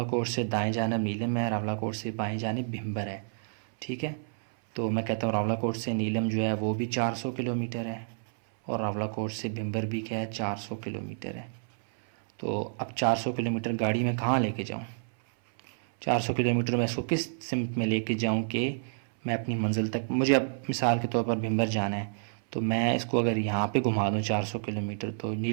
से दाएं जानिब नीलम है, रावलाकोट से बाएं जानिब भिम्बर है। ठीक है, तो मैं कहता हूँ रावलाकोट से नीलम जो है वो भी 400 किलोमीटर है और रावलाकोट से भिम्बर भी क्या है 400 किलोमीटर है। तो अब 400 किलोमीटर गाड़ी में कहाँ लेके जाऊँ? 400 किलोमीटर मैं इसको किस सिमत में लेके जाऊँ कि मैं अपनी मंजिल तक, मुझे अब मिसाल के तौर पर भिम्बर जाना है, तो मैं इसको अगर यहाँ पे घुमा दूँ 400 किलोमीटर तो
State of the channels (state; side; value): silent; left; 58 dB below the other